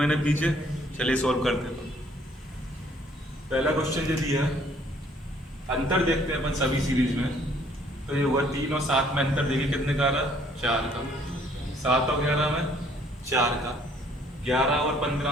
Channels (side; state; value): both; normal; correlation 0.62